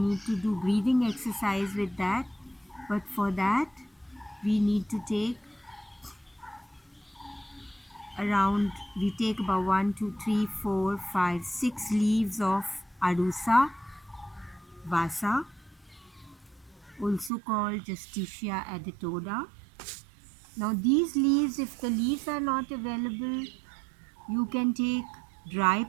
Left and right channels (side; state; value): left; drops out; at 17.3 s